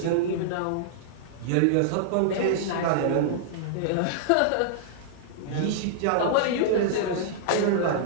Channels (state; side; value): different; both; correlation -0.01